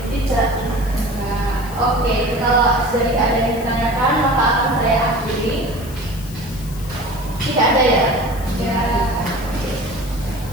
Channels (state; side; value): noise; left; hiss, 17 dB below the sound